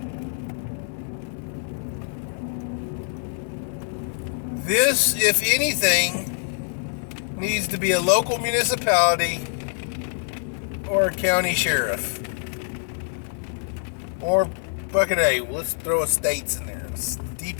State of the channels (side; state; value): right; silent; 59 dB below the other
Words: This, if anything, needs to be a local municipality or a county sheriff. Or fucking A, let's throw a states in there.